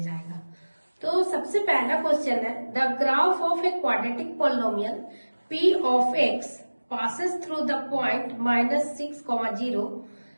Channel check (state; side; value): inverted; both; correlation -1.00